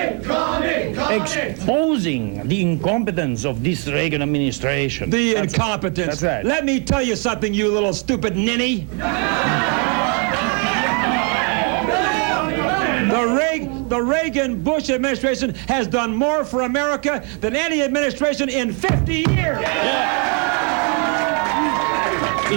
exposing the incompetence of this Reagan administration. The incompetence. That's right. Let me tell you something, you little stupid ninny. The Reagan-Bush administration has done more for America than any administration in 50 years. Yeah.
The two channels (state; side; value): quieter; left; 37.7 dB